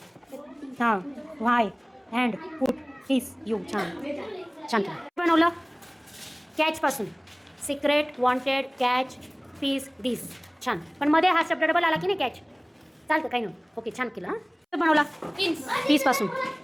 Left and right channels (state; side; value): identical; both; correlation 1.00